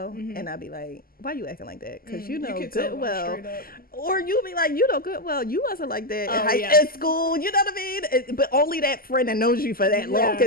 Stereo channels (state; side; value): late; right; 0.42 ms